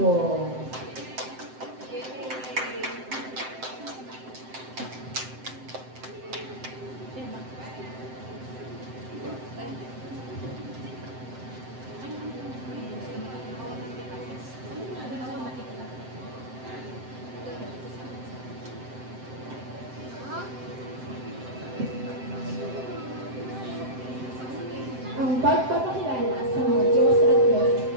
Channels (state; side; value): late; left; 7.7 ms